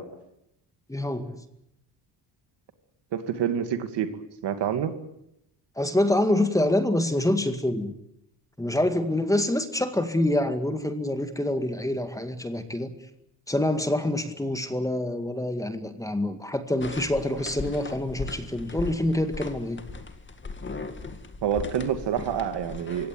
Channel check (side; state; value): both; normal; correlation 0.65